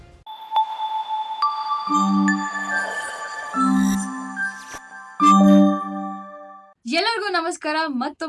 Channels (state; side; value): identical; both; correlation 1.00